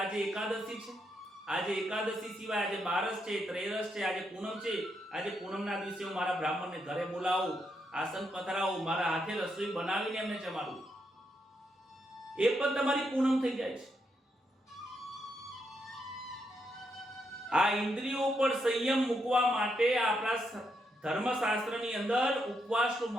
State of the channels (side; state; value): both; normal; correlation 0.80